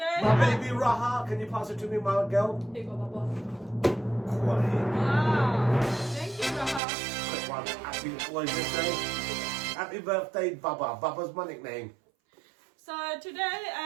My baby Raha, can you pass it to me, my girl? Here you go, Baba. Quality. Wow. Thank you, Raha. Quick one. Happy, what did you say? Happy birthday, Baba. Baba's my nickname. So today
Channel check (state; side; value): drops out; left; at 6.8 s